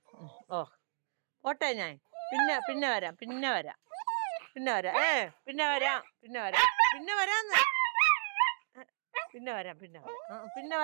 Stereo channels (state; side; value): silent; left; digital silence